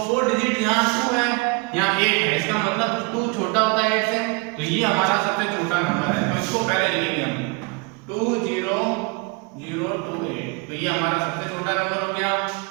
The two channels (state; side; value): quieter; left; 29.3 dB